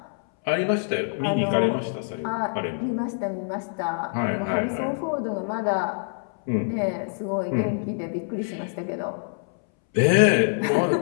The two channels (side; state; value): right; silent; 62 dB below the other